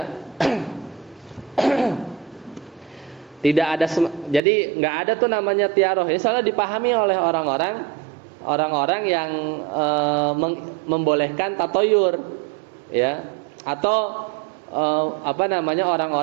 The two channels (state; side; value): drops out; left; at 4.4 s